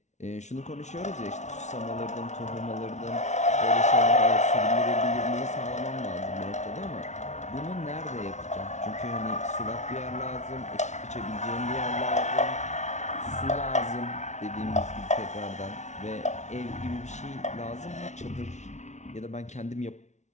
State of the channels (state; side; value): late; right; 0.33 ms